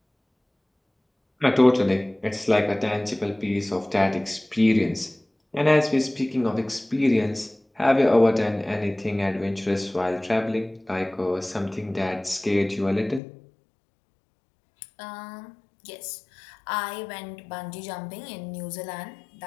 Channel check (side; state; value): right; drops out; at 13.2 s